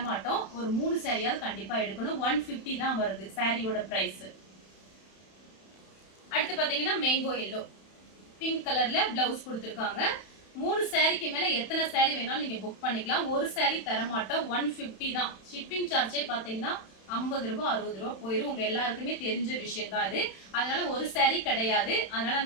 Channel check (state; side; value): late; right; 31 ms